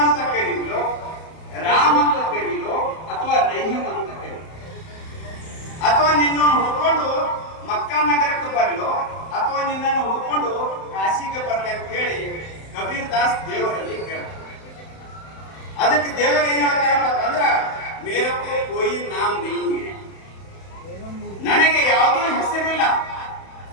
ಅಂತ ಕರೀಲೋ, ರಾಮ್ ಅಂತ ಕರೀಲೋ, ಅಥವಾ ರಹೀಮ್ ಅಂತ ಕರೀಲೋ? ಅಥವಾ ನಿನ್ನನ್ನು ಹುಡ್ಕೊಂಡು ಮಕ್ಕಾ ನಗರಕ್ಕೆ ಬರಲೋ, ಅಥವಾ ನಿನ್ನನ್ನು ಹುಡ್ಕೊಂಡು ಕಾಶಿಗೆ ಬರಲಿ ಅಂತ ಹೇಳಿ ಕಬೀರ್ ದಾಸ್ ದೇವರಲ್ಲಿ ಕೇಳ್ತಾರೆ. ಅದಕ್ಕೆ ದೇವರು ಏನ್ ಹೇಳ್ತಾರಪ್ಪ ಅಂದ್ರ, ಮೇರಕ್ಕೂ ಕೋಯಿ ನಾಮ್ ನಹೀ ಹೈ, ನನಗೆ ಯಾವುದೂ ಹೆಸರಿಲ್ಲ.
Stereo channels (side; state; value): right; late; 31 ms